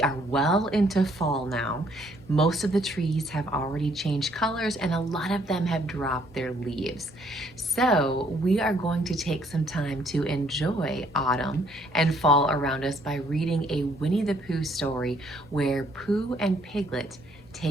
well into fall now. Most of the trees have already changed colors and a lot of them have dropped their leaves. So we are going to take some time to enjoy autumn and fall around us by reading a Winnie the Pooh story where Pooh and Piglet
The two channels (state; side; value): normal; both; correlation 0.66